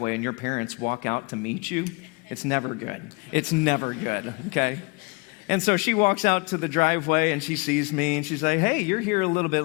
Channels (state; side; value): quieter; right; 28.6 dB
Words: and your parents walk out to meet you, it's never good. It's never good, okay? And so she walks out to the driveway and she sees me and she's like, hey, you're here a little bit